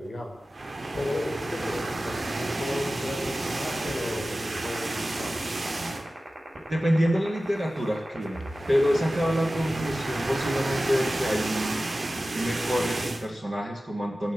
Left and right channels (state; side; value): normal; both; correlation 0.95